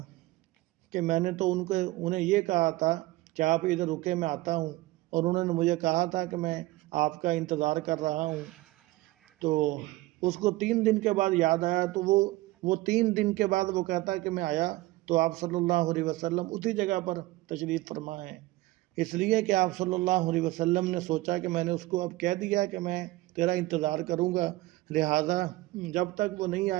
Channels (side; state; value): left; quieter; 18.8 dB